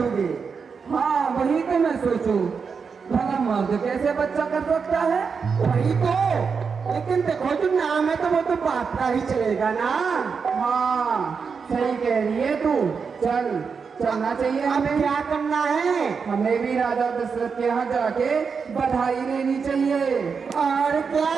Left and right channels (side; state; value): left; quieter; 5.7 dB